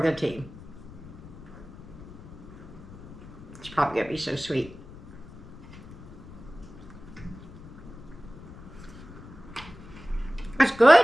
the team. It's probably going to be so sweet. That's good.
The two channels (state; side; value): noise; left; rumble, 16 dB below the sound